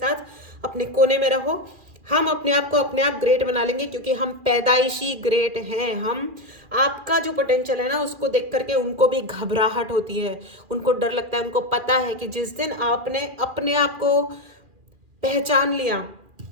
अपने कोने में रहो। हम अपने आप को अपने आप ग्रेट बना लेंगे क्योंकि हम पैदाइशी ग्रेट हैं। हम, आपका जो पोटेंशियल है ना, उसको देख करके उनको भी घबराहट होती है, उनको डर लगता है। उनको पता है कि जिस दिन आपने अपने आप को पहचान लिया,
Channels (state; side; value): late; left; 2.4 ms